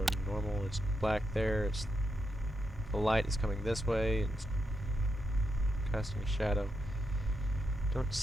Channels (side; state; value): both; normal; correlation 0.84